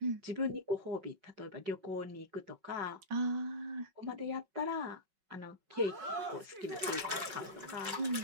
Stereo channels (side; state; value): left; late; 5.3 ms